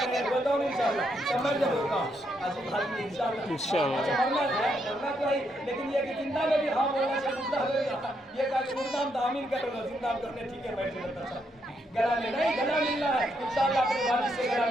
बताओ इंशाअल्लाह समझ होगा इंशाअल्लाह। अच्छा मरना तो है, लेकिन ये कि जिंदा में भी हाँ बोलना चाहिए, मुर्दा में ये कहा कि मुर्दा हम दामिन कर लो, जिंदा करने ठीक है बैठे रहता था गला में नहीं, गला मिलना है इंशाअल्लाह, अपने वालिद से गला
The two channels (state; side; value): normal; both; correlation 0.77